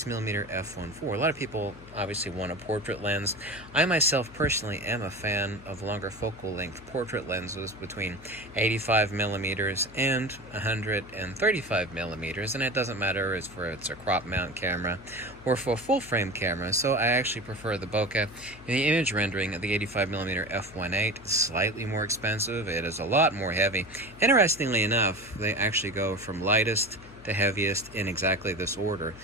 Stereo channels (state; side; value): noise; left; hum, 20 dB below the sound